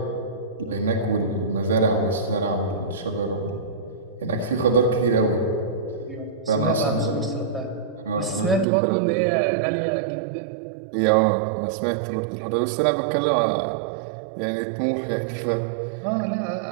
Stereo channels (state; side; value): drops out; left; at 8.7 s